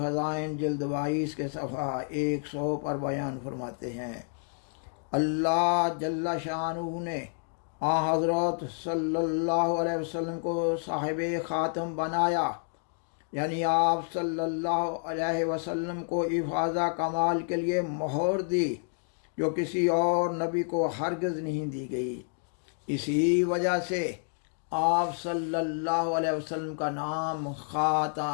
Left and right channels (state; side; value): silent; right; 58 dB below the other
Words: جلد 22 کے صفحہ 100 پر بیان فرماتے ہیں، اللہ جل شانہ نے حضرت صلی اللہ علیہ وسلم کو صاحب خاتم بنایا، یعنی آپ صلی اللہ علیہ وسلم کو افاضہ کمال کے لیے مہر دی جو کسی اور نبی کو ہرگز نہیں دی گئی۔ اسی وجہ سے آپ صلی اللہ علیہ وسلم کا نام